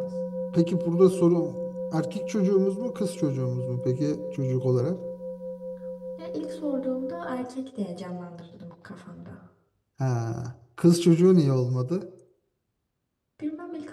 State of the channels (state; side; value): identical; both; correlation 1.00